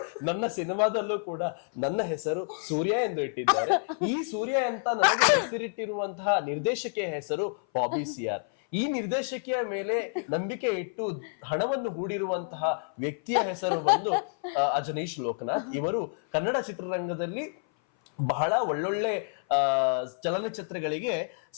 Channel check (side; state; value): right; silent; 56 dB below the other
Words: ನನ್ನ ಸಿನಿಮಾದಲ್ಲೂ ಕೂಡ ನನ್ನ ಹೆಸರು ಸೂರ್ಯ ಎಂದು ಇಟ್ಟಿದ್ದಾರೆ. ಈ ಸೂರ್ಯ ಅಂತ ನನಗೆ ಹೆಸರಿಟ್ಟಿರುವಂತಹ ನಿರ್ದೇಶಕಿಯ ಹೆಸರು ಬಾಬಿ ಸಿಆರ್. ಈ ನಿರ್ದೇಶಕಿಯ ಮೇಲೆ ನಂಬಿಕೆ ಇಟ್ಟು ಹಣವನ್ನು ಹೂಡಿರುವಂತಹ ವ್ಯಕ್ತಿಯ ಹೆಸರು ಬಂದು ಅಜನೀಶ್ ಲೋಕನಾಥ್. ಇವರು ಕನ್ನಡ ಚಿತ್ರರಂಗದಲ್ಲಿ ಬಹಳ ಒಳ್ಳೊಳ್ಳೆ ಚಲನಚಿತ್ರಗಳಿಗೆ